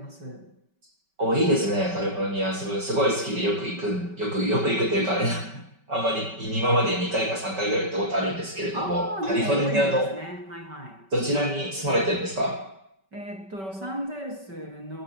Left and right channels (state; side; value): late; left; 5.2 ms